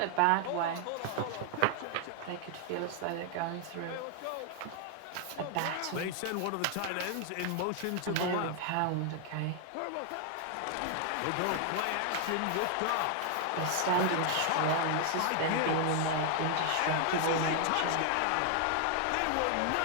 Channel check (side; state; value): both; different; correlation 0.00